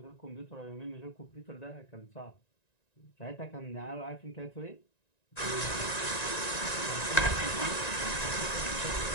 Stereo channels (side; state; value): right; late; 1.9 ms